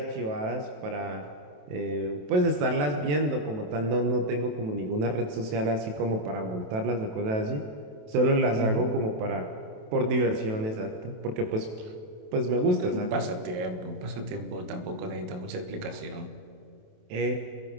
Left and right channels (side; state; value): left; late; 27 ms